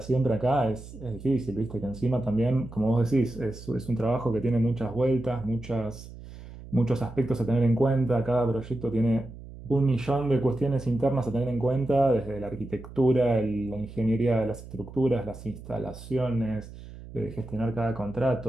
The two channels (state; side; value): noise; right; hum, 15 dB below the sound